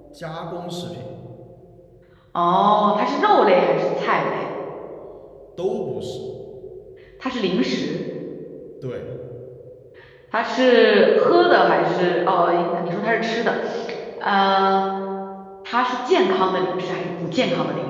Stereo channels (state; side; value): identical; both; correlation 1.00